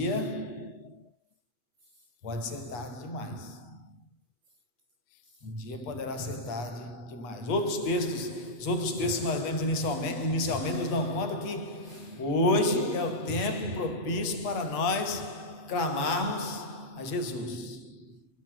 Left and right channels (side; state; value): right; late; 8.3 ms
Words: pode ser tarde demais. Um dia poderá ser tarde demais. Os outros textos que nós lemos inicialmente nos dão conta que hoje é o tempo propício para nós clamarmos a Jesus.